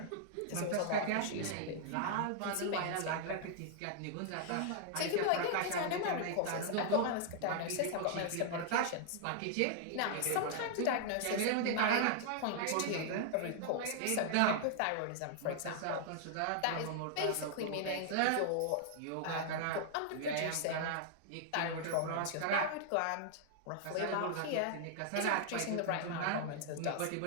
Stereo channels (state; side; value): different; both; correlation -0.01